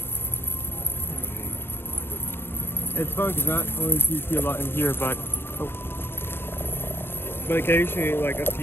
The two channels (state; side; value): late; right; 0.11 ms